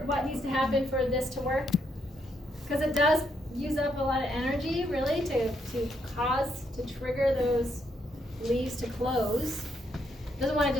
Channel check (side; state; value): both; normal; correlation 0.76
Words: what needs to happen for this to work? Because it does use up a lot of energy, really, to trigger those leaves to close. Doesn't want to